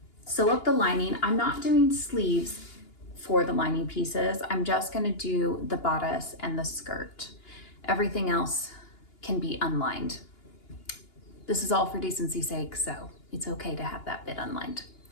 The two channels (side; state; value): right; late; 2.8 ms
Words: sew up the lining. I'm not doing sleeves for the lining pieces. I'm just gonna do the bodice and the skirt. Everything else can be unlined. This is all for decency's sake, so it's okay to have that bit unlined.